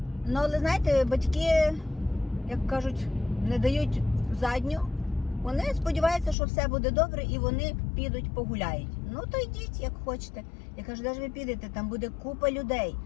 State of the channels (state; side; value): drops out; right; at 6.4 s